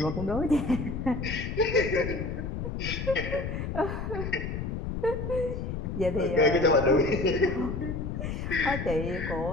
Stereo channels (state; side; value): noise; left; rumble, 4 dB below the sound